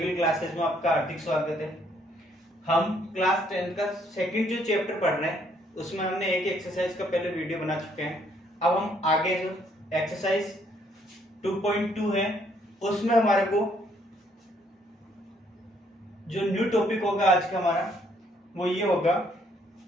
क्लासेस में आपका हार्दिक स्वागत है। हम क्लास 10 का सेकंड जो चैप्टर पढ़ रहे हैं उसमें हमने एक एक्सरसाइज का पहले वीडियो बना चुके हैं। अब हम आगे जो एक्सरसाइज 2.2 है उसमें हमारे को जो न्यू टॉपिक होगा आज का हमारा वो ये होगा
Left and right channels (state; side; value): normal; both; correlation 0.67